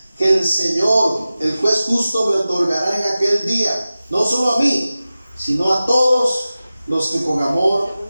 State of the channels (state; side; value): inverted; both; correlation -0.95